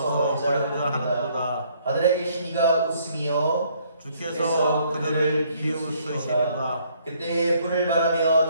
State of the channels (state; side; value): inverted; both; correlation -0.65